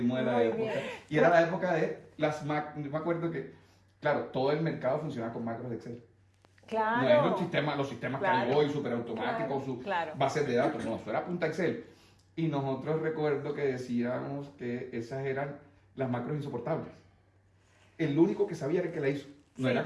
de la Muy época. bien. Y era la época de las Mac. Yo me acuerdo que, claro, todo el mercado funcionaba con macros de Excel. Claro. No es los sistemas que hay Claro. hoy, súper automáticos, sus Claro. bases de datos. No, eso era punta Excel. Y nosotros recuerdo que decíamos que esas eran las macros insoportables. El único que sabía era el que la hizo. No Sí, era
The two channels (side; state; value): both; identical; correlation 1.00